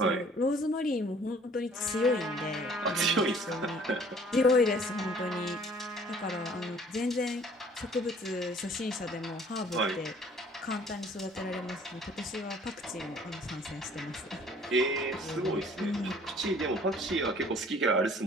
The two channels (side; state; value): both; normal; correlation 0.55